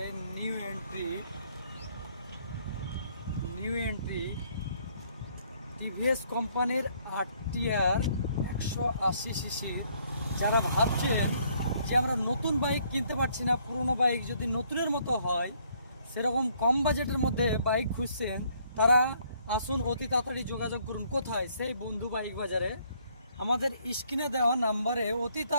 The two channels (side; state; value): both; inverted; correlation -0.66